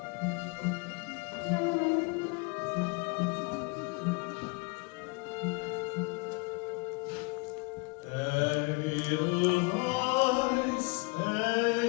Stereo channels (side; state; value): right; quieter; 30.7 dB